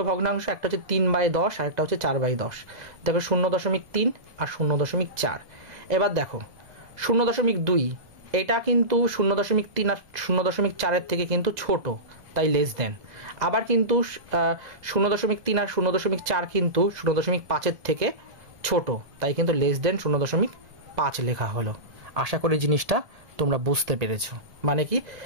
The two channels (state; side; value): late; left; 2.0 ms